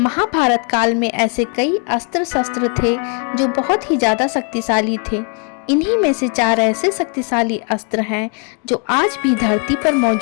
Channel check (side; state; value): right; quieter; 37.3 dB